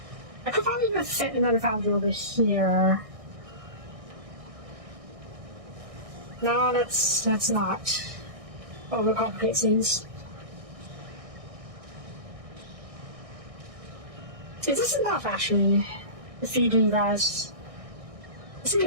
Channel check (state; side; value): late; left; 1.6 ms